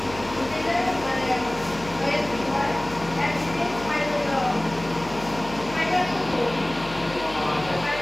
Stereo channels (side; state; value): left; noise; hum, 15 dB below the sound